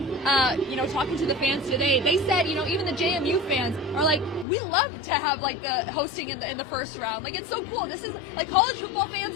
Talking to the fans today, they said, even the JMU fans are like, we love to have the hosting in the first round. It's so cool. This is college football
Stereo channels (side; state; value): right; drops out; at 4.5 s